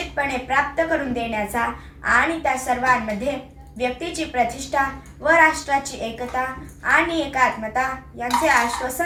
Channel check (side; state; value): both; identical; correlation 1.00